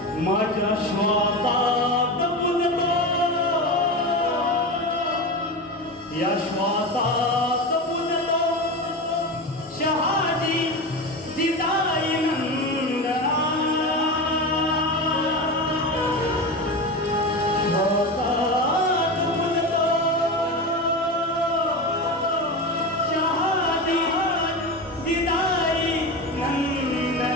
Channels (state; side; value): normal; both; correlation 0.23